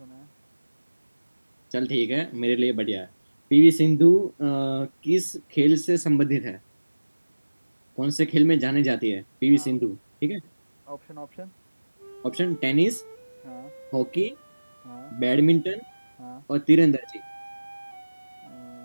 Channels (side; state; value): both; inverted; correlation -1.00